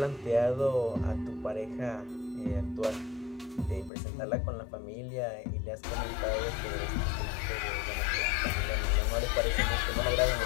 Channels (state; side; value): drops out; right; at 3.9 s